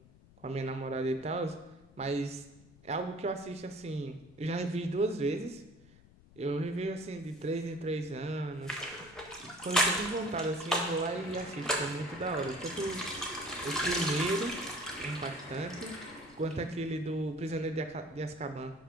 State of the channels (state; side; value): noise; left; rumble, 24 dB below the sound